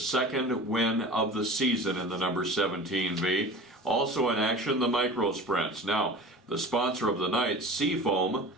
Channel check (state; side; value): normal; both; correlation 0.38